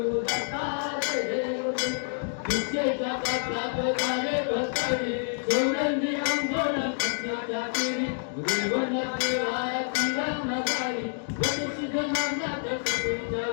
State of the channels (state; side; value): silent; right; digital silence